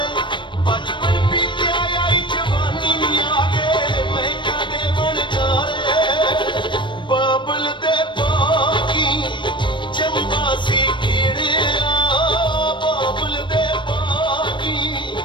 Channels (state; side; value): late; right; 0.23 ms